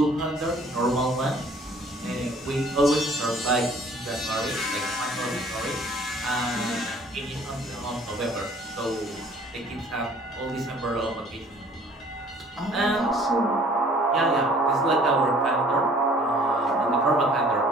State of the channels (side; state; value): both; normal; correlation 0.54